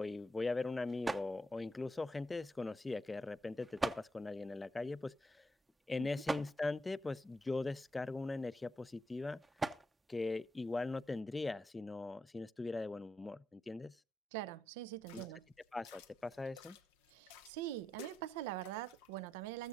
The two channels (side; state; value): both; normal; correlation 0.85